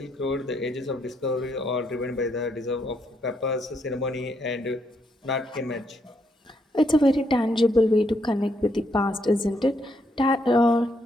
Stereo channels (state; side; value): normal; both; correlation 0.75